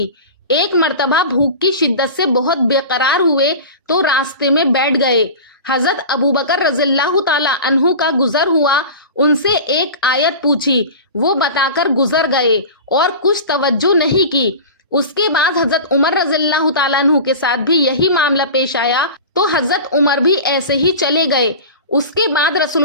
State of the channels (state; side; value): inverted; both; correlation -0.33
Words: ایک مرتبہ بھوک کی شدت سے بہت بے قرار ہوئے تو راستے میں بیٹھ گئے۔ حضرت ابوبکر رضی اللہ تعالی عنہ کا گزر ہوا، ان سے ایک آیت پوچھی، وہ بتا کر گزر گئے اور کچھ توجہ نہیں کی۔ اس کے بعد حضرت عمر رضی اللہ تعالیٰ عنہ کے ساتھ بھی یہی معاملہ پیش آیا تو حضرت عمر بھی ایسے ہی چلے گئے۔ اس کے بعد